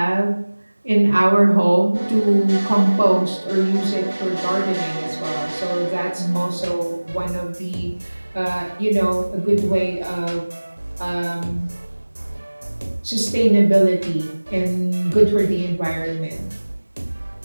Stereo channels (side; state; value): both; inverted; correlation -1.00